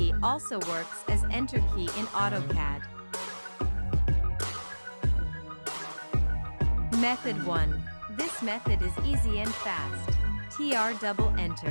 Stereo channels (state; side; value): inverted; both; correlation -1.00